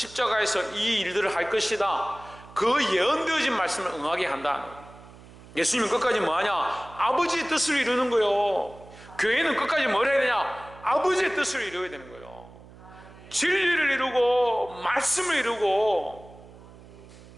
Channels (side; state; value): right; noise; hum, 20 dB below the sound